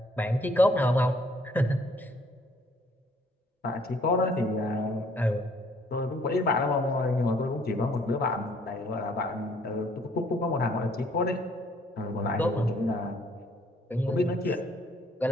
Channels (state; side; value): normal; both; correlation 0.62